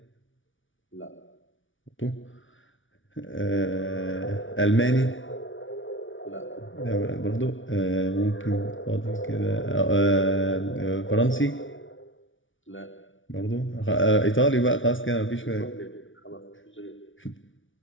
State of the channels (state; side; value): late; right; 0.56 ms